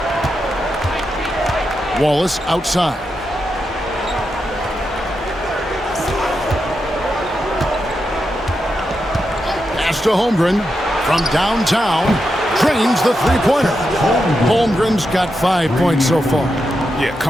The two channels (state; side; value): normal; both; correlation 0.86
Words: Wallace outside. Pass to Holmgren from downtown. Drains the three-pointer. Holmgren's got 5 points so far. Yeah,